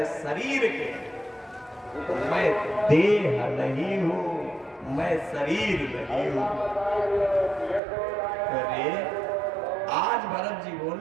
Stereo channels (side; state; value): left; drops out; at 7.8 s